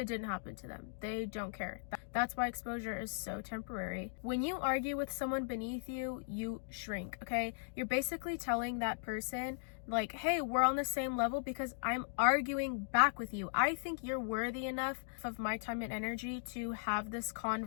didn't happen to them. They don't care. That's why exposure is so temporary. When you argue with someone beneath you, you shrink, okay? You're basically telling that person, like, hey, we're on the same level because I'm arguing back with you. I think you're worthy enough of my time and energy to have this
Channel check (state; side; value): silent; right; digital silence